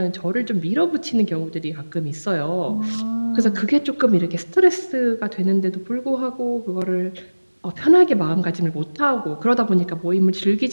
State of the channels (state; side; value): inverted; both; correlation -1.00